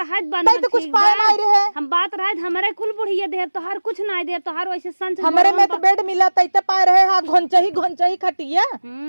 बना तो कुछ पाए नहीं रहे हम बात रहत हमरे कुल बुढ़िया दे तोहार कुछ नहीं दे तोहार वैसे संच हमरे में तो बेड मिला तैते पाए रहे हां घोंचही खटिया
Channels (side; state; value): both; inverted; correlation -1.00